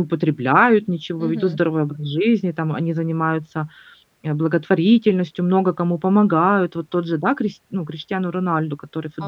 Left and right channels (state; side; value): identical; both; correlation 1.00